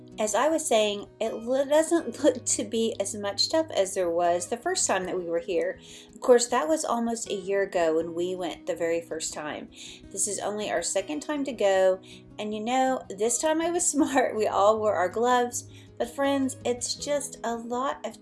as I was saying, it doesn't look to be as much stuff as there was the first time that we were here. Of course, that was almost a year ago when we went the very first time. This is only our second time to go, and you know, this time I was smart. We all wore our gloves, but friends, it's just a lot of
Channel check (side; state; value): both; identical; correlation 1.00